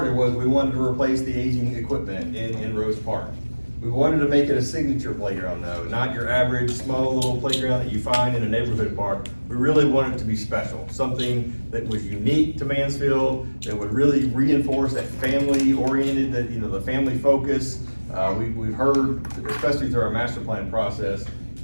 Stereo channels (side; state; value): both; inverted; correlation -1.00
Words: was we wanted to replace the aging equipment in Rose Park. We wanted to make it a signature playground though, not your average small little playground that you find in a neighborhood park. We really wanted it to be special, something that was unique to Mansfield, that would really reinforce that family-oriented, the family focus. We've heard, especially through our master plan process,